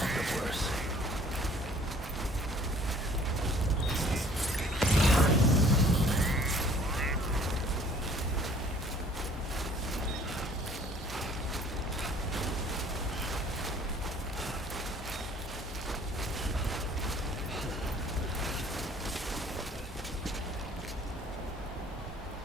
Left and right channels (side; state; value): both; normal; correlation 0.54